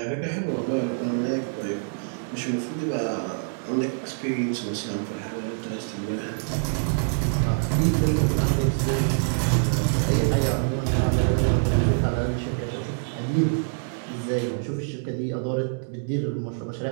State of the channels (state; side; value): silent; left; digital silence